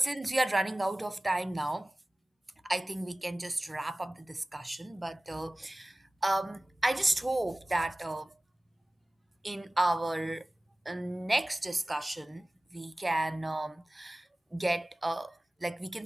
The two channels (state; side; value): normal; both; correlation 0.98